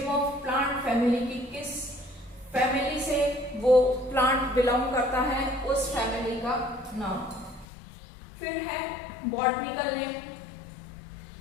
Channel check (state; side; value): drops out; right; at 7.7 s